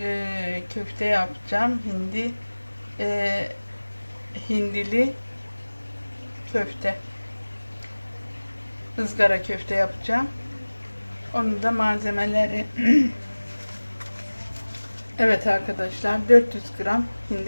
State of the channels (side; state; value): both; inverted; correlation -1.00